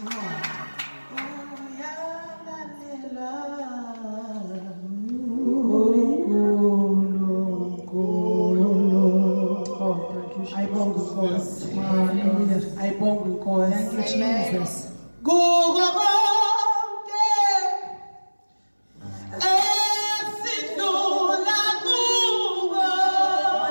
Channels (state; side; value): inverted; both; correlation -1.00